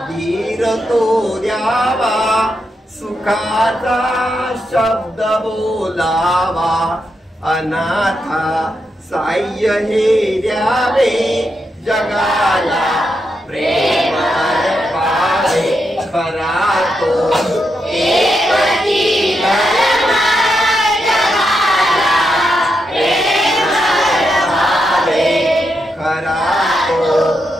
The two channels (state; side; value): normal; both; correlation 0.84